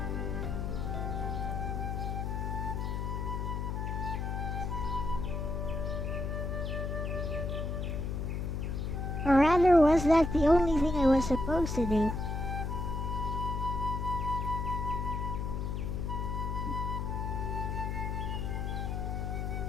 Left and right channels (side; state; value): left; noise; hum, 2 dB below the sound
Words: Or rather, was that the only thing I was supposed to do?